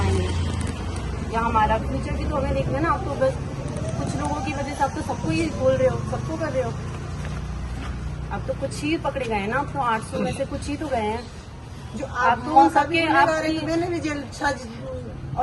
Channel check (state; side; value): identical; both; correlation 1.00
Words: या हमारा फ्यूचर भी तो हमें देखना है ना। आप तो बस कुछ लोगों की वजह से आप तो सबको ही बोल रहे हो, सबको कर रहे हो। अब तो कुछ ही पकड़े गए हैं ना, अब तो 800 में से कुछ ही तो गए हैं जो आप तो सबके मैंने भी जेल